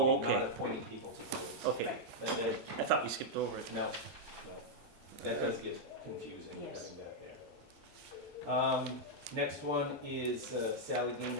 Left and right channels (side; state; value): both; normal; correlation -0.03